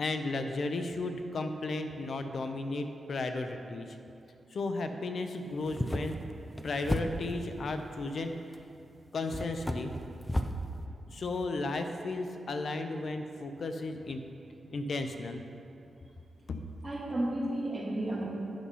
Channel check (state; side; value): normal; both; correlation 0.87